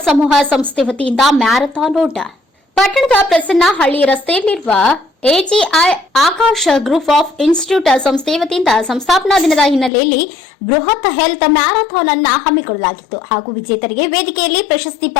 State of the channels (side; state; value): right; drops out; at 9.9 s